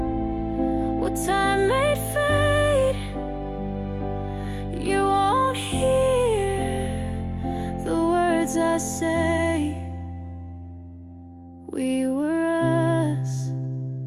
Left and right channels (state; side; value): identical; both; correlation 1.00